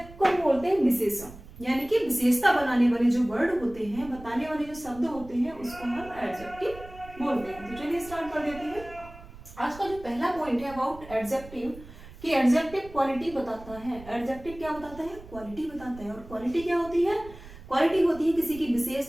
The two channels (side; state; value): right; noise; rumble, 17 dB below the sound